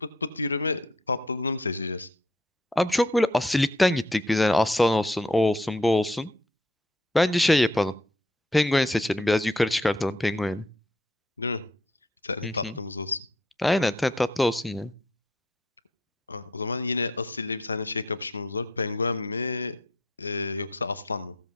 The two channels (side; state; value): both; normal; correlation 0.65